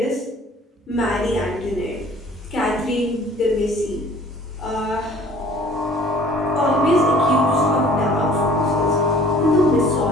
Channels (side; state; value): both; normal; correlation 0.52